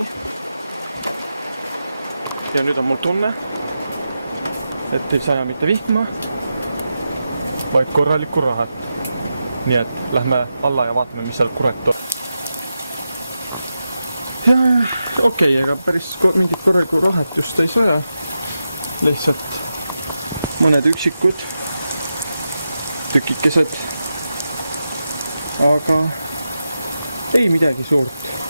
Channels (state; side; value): inverted; both; correlation -0.90